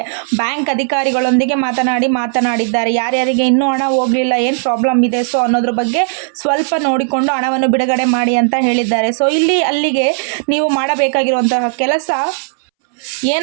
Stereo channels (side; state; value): left; silent; 67 dB below the other